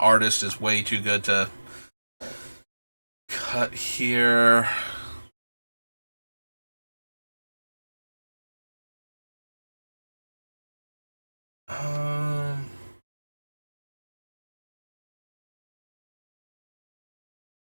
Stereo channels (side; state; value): both; inverted; correlation -1.00